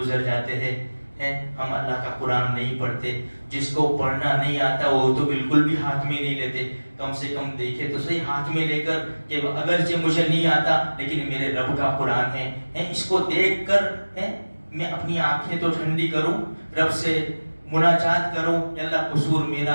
جاتے ہیں، ہم اللہ کا قرآن نہیں پڑھتے۔ جس کو پڑھنا نہیں آتا وہ تو بالکل بھی ہاتھ میں نہیں لیتے، کم سے کم دیکھے تو صحیح ہاتھ میں لے کر کہ اگرچہ مجھے نہیں آتا لیکن میرے رب کا قرآن ہے، اس کو دیکھ کر میں اپنی آنکھیں تو ٹھنڈی کروں، رب سے مناجات کروں کہ اللہ قصور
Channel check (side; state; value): both; inverted; correlation -1.00